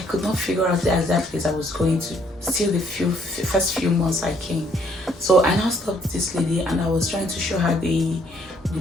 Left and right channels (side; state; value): both; normal; correlation 0.66